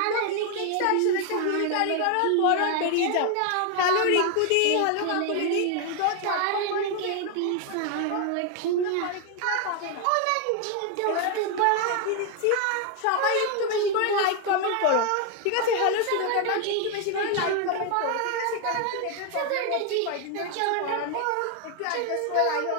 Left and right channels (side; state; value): both; different; correlation 0.01